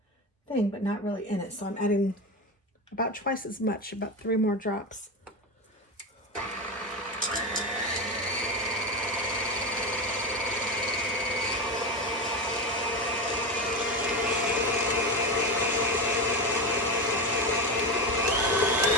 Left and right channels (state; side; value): normal; both; correlation 0.18